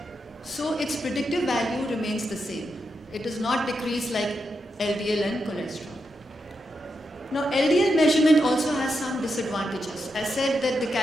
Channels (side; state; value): both; normal; correlation 0.85